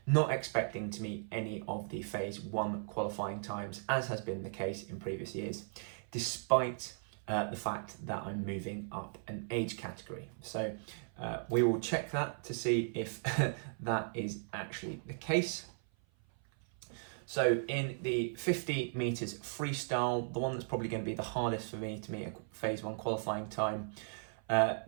not expecting to meet any of the phase 1 qualifying times, as has been the case in previous years, despite the fact that I'm moving up an age category. So we will check that to see if that is actually the case. So in the 50 meters freestyle, the one that's probably going to be the hardest for me to meet a phase 1 qualifying time,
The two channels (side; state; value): left; silent; 53 dB below the other